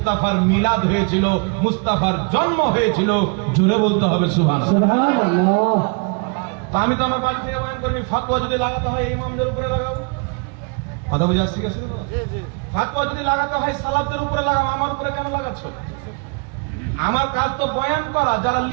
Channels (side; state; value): left; quieter; 34.2 dB